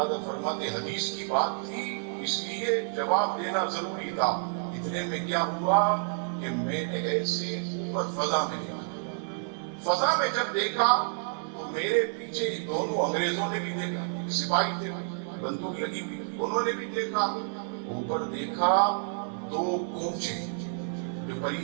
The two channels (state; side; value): silent; left; 58 dB below the other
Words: حضرت فرماتے حدیث کی بات تھی اس لیے جواب دینا ضروری تھا۔ اتنے میں کیا ہوا کہ میں نے ایسے اوپر فضا میں دیکھا، فضا میں جب دیکھا تو میرے پیچھے دونوں انگریزوں نے بھی دیکھا، سپاہی تھے بندوق لگی ہوئی، انہوں نے بھی دیکھا، اوپر دیکھا دو کونچے، جو